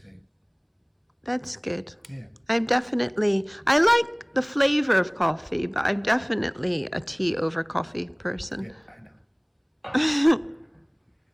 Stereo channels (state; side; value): identical; both; correlation 1.00